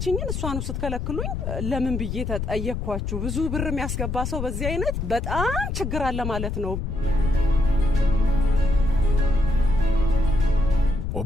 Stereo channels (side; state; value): left; noise; rumble, 3 dB below the sound